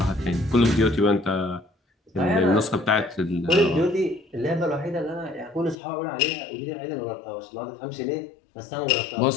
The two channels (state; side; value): drops out; right; at 5.8 s